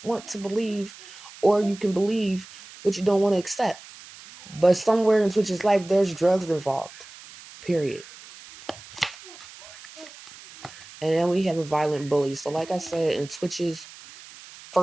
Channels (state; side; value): noise; right; hiss, 18 dB below the sound